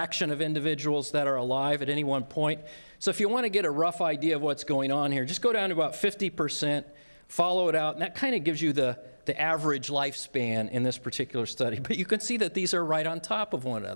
of individuals that are alive at any one point. So if you want to get a rough idea of what's going on here, just go down to about 50%, follow it out, and that kind of gives you the average lifespan in this particular study. But you can see that these are right on top of one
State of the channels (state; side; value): inverted; both; correlation -1.00